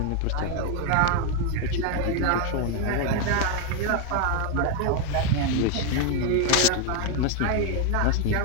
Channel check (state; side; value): different; both; correlation 0.01